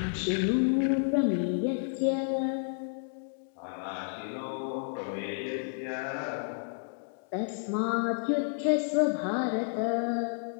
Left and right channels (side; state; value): right; silent; digital silence